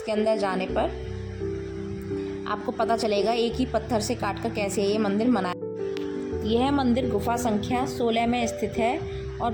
अंदर जाने पर आपको पता चलेगा एक ही पत्थर से काटकर कैसे ये मंदिर बनाया। यह मंदिर गुफा संख्या 16 में स्थित है और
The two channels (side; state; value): both; identical; correlation 1.00